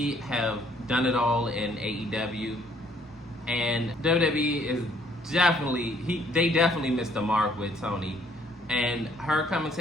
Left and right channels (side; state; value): both; normal; correlation 0.64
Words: have done it all in AEW, and WWE is they definitely missed the mark with Tony, and her coming